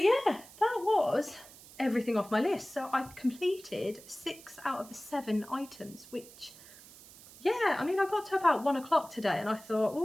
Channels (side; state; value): right; noise; hiss, 20 dB below the sound